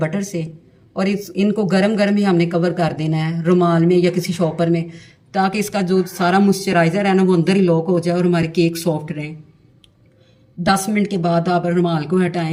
से और इनको गरम गरम ही हमने कवर कर देना है रुमाल में या किसी शॉपर में ताकि इसका जो सारा मॉइस्चराइज़र है ना वो अंदर ही लॉक हो जाए और हमारे केक सॉफ्ट रहें। 10 मिनट के बाद आप रुमाल को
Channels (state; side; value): identical; both; correlation 1.00